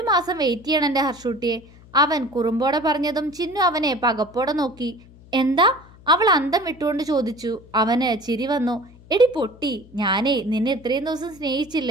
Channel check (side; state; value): left; noise; hum, 23 dB below the sound